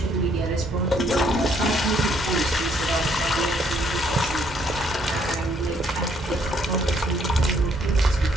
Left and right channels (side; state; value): both; normal; correlation 0.68